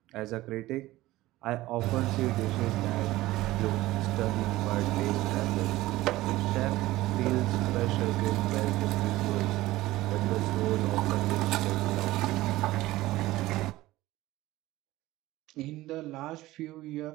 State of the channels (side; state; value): left; quieter; 17.3 dB